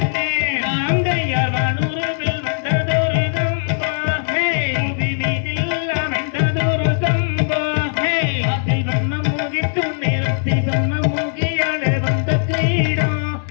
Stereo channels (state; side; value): silent; right; 66 dB below the other